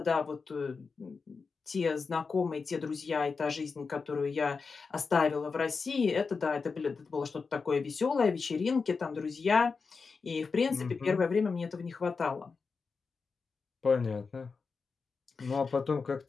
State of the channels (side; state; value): right; quieter; 4.8 dB